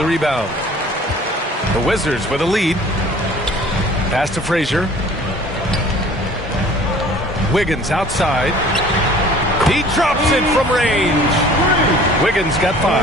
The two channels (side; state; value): both; normal; correlation 0.49